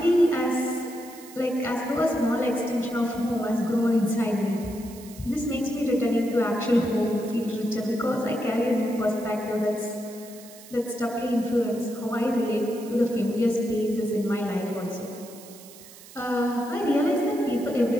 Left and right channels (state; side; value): noise; right; hiss, 19 dB below the sound